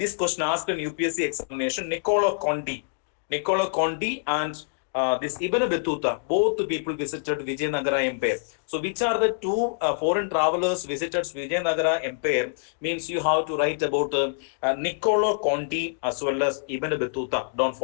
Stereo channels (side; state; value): right; silent; digital silence